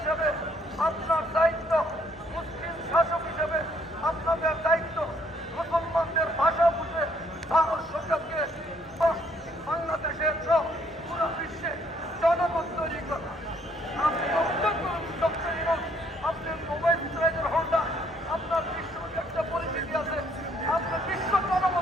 আপনার দায়িত্ব, মুসলিম শাসক হিসেবে আপনাদের দায়িত্ব মুসলমানদের ভাষা বুঝে ভারত সরকারকে বাংলাদেশের সহ পুরো বিশ্বে জনমত তৈরি করা। আপনি অভিযোগ করুন ডক্টর ইউনূস, আপনার মোবাইল ইসরায়েলের হোল্ডার, আপনার বিশ্ব একটা পরিচিতি আছে, আপনি বিশ্ব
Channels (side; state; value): both; normal; correlation 0.66